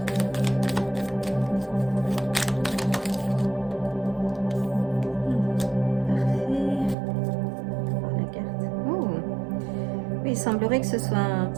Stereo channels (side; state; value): left; drops out; at 7.0 s